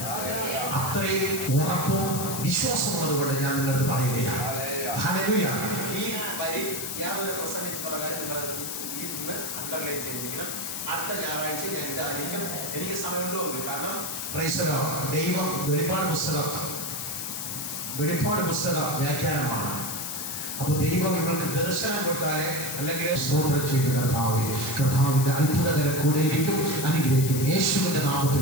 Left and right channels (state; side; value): noise; left; hiss, 5 dB below the sound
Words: അത്രയും ഉറപ്പും വിശ്വാസമുള്ളത് കൊണ്ട് ഞാൻ നിങ്ങളുടെ അടുത്ത് പറയുകയാണ്. ഹല്ലേലൂയ. ഈ വരി ഞാൻ ഒരു പ്രസംഗിച്ച് പറയാൻ നിങ്ങൾ ഇന്ന് അണ്ടർലൈൻ ചെയ്തിരിക്കണം. അടുത്ത ഞായറാഴ്ച ഞാൻ ഇതായിരിക്കും. എനിക്ക് സമയമുണ്ടോ? കാരണം പ്രൈസ് ദി ലോർഡ്. ദൈവം വെളിപ്പാട് പുസ്തക വ്യാഖ്യാനമാണ്. അപ്പൊ ദൈവം നിങ്ങൾക്ക് ദർശനം കൊടുത്താലേ, അല്ലെങ്കിൽ സ്തോത്രം ചെയ്ത് കർത്താവിന്റെ അത്ഭുതകരം കൂടെയിരിക്കും, അനുഗ്രഹിക്കും. യേശുവിന്റെ നാമത്തിൽ